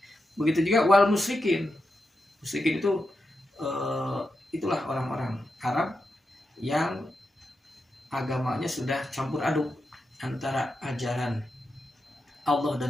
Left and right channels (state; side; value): normal; both; correlation 0.88